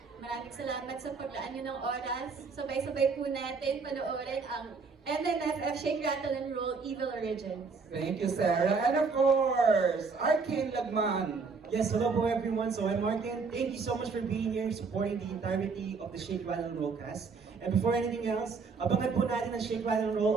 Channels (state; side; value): quieter; left; 4.8 dB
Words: Maraming salamat sa paglaan nyo ng oras. Sabay-sabay po natin panoorin ang MMFF Shake, Rattle, and Roll Evil Origins. Thank you, Sarah. And of course, Arcane Lagman. Yes, hello po everyone. So I'm Martin. Thank you so much for being here, supporting the entirety of the Shake, Rattle, and Roll cast. And before anything else, abangan po natin ang Shake, Rattle, and Roll